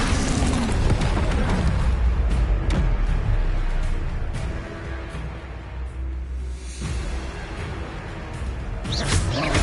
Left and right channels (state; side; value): identical; both; correlation 1.00